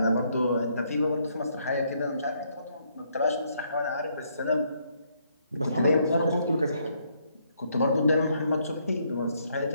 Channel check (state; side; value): inverted; both; correlation -0.72